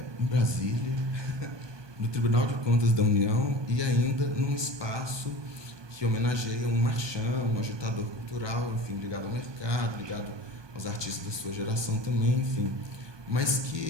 Brasília, no Tribunal de Contas da União, e ainda num espaço que homenageia um marchand, um agitador cultural, enfim, ligado ao mercado, ligado aos artistas da sua geração também, enfim, mas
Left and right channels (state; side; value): late; left; 1.2 ms